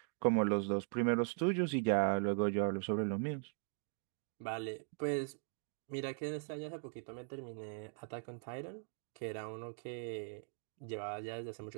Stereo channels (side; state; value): left; silent; 51 dB below the other